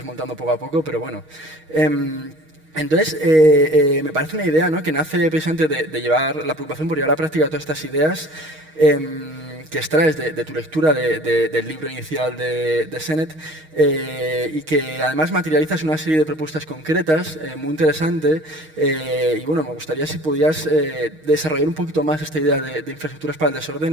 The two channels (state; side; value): late; left; 6.4 ms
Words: poco a poco, pero bueno. Entonces, me parece una idea, ¿no? Que nace precisamente de llevar la preocupación por llevar a la práctica todas estas ideas que extraes de tu lectura del libro inicial de Sennett y que además materializas una serie de propuestas concretas muy interesante y bueno, me gustaría si pudieras desarrollar un poquito más esta idea de infraestructuras para el